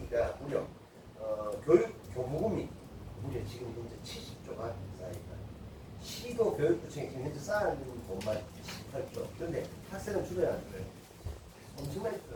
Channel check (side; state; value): both; identical; correlation 1.00